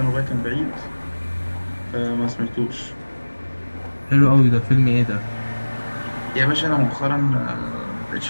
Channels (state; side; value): inverted; both; correlation -1.00